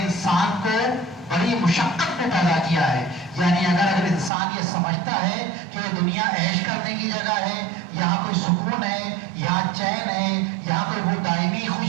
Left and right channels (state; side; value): drops out; left; at 4.3 s